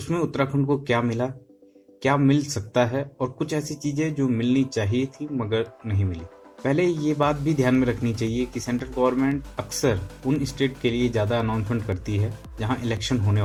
उत्तराखंड को क्या मिला, क्या मिल सकता है और कुछ ऐसी चीजें जो मिलनी चाहिए थी मगर नहीं मिली। पहले ये बात भी ध्यान में रखनी चाहिए कि सेंट्रल गवर्नमेंट अक्सर उन स्टेट के लिए ज़्यादा अनाउंसमेंट करती है जहां इलेक्शन होने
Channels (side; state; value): both; identical; correlation 1.00